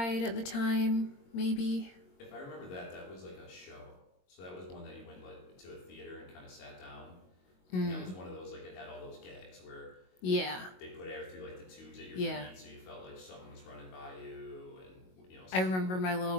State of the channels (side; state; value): right; late; 22 ms